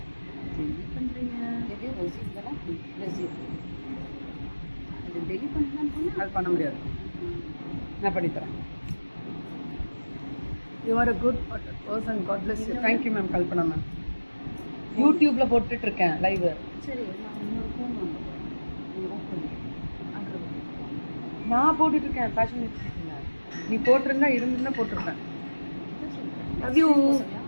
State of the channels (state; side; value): inverted; both; correlation -1.00